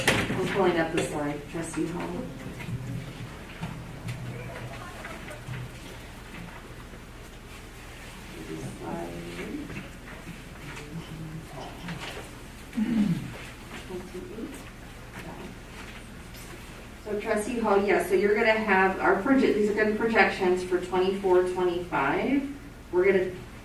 pulling up the slide, Trustee Hall. So Trustee Hall, yeah, so you're gonna have these are gonna be projections for 24-25. We're gonna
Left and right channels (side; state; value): both; identical; correlation 1.00